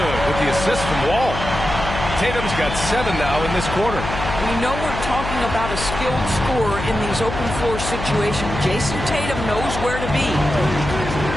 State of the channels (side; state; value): left; noise; hum, 6 dB below the sound